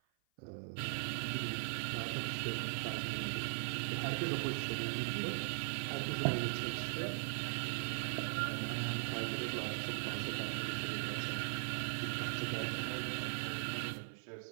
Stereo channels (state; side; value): silent; left; 51 dB below the other